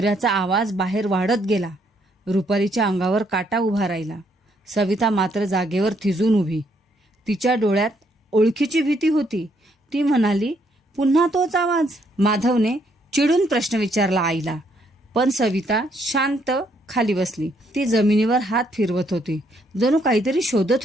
आवाज बाहेर वाढत गेला. रुपालीच्या अंगावर काटा उभा राहिला. सविता मात्र जागेवर थिजून उभी. तिच्या डोळ्यात ओळखीची भीती होती. ती म्हणाली, पुन्हा तोच आवाज. माधवने चिडून प्रश्न विचारला आईला, पण सविता शांत खाली बसली. ती जमिनीवर हात फिरवत होती, जणू काहीतरी शोधत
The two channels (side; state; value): both; normal; correlation 0.71